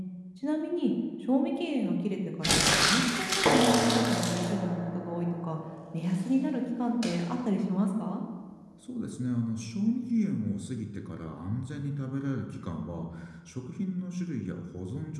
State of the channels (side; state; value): both; identical; correlation 1.00